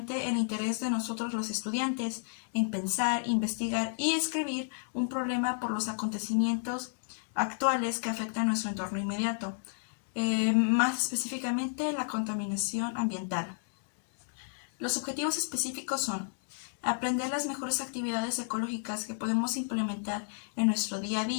el interés de nosotros los estudiantes en pensar, investigar y escribir un problema por los acontecimientos actuales que afectan nuestro entorno inmediato, más específicamente la contaminación ambiental. Los objetivos específicos son aprender las mejores actividades ecológicas que podemos implementar en nuestro día a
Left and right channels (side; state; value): right; silent; digital silence